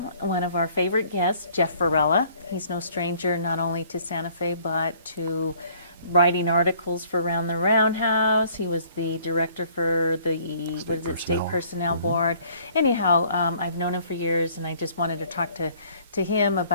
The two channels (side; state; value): both; inverted; correlation -0.58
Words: one of our favorite guests, Jeff Varela. He's no stranger not only to Santa Fe, but to writing articles for Around the Roundhouse. He was the director for the, State Personnel Board. Anyhow, I've known him for years, and I just wanted to talk to him